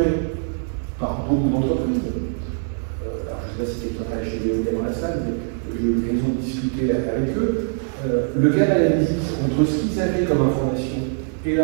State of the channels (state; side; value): silent; left; 60 dB below the other